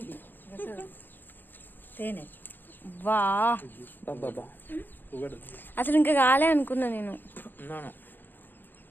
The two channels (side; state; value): right; late; 0.092 ms